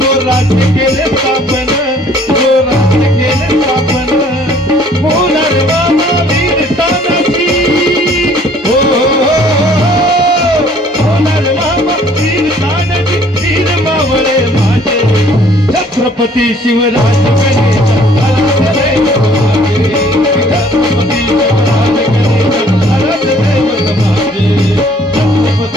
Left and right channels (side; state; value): both; normal; correlation 0.58